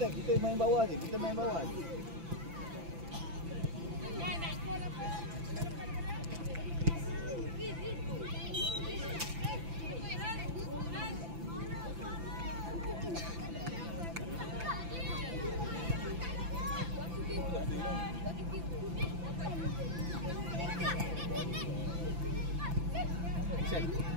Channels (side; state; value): left; late; 5.9 ms